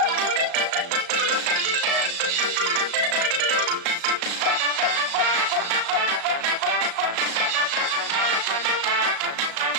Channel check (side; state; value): left; late; 35 ms